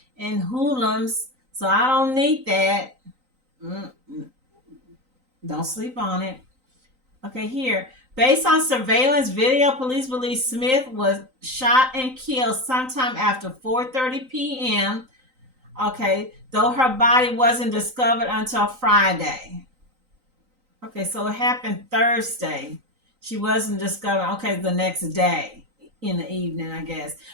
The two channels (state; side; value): late; left; 3.9 ms